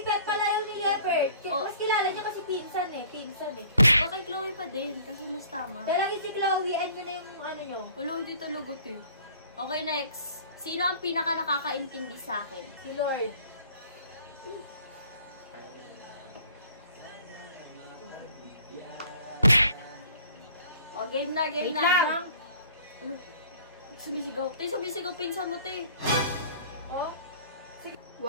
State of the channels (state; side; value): inverted; both; correlation -0.52